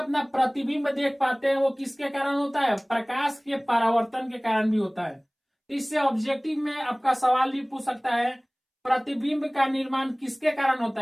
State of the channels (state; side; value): identical; both; correlation 1.00